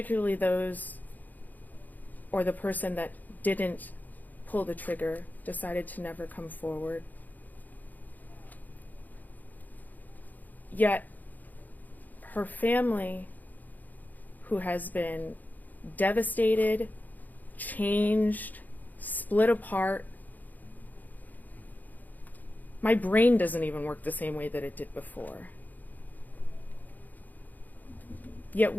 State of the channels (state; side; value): late; right; 0.083 ms